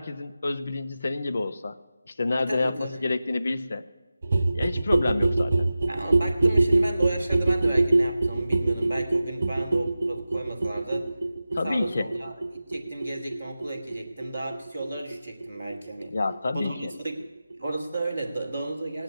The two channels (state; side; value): inverted; both; correlation -0.94